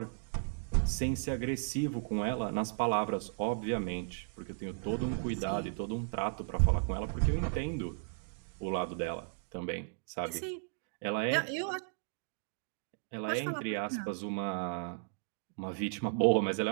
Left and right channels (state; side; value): silent; left; digital silence